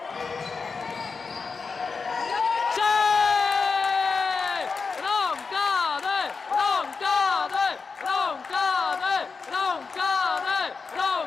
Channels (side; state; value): right; quieter; 4.9 dB